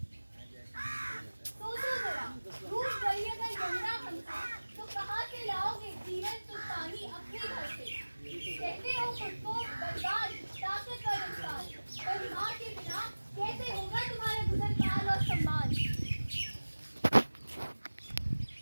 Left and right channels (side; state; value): both; inverted; correlation -1.00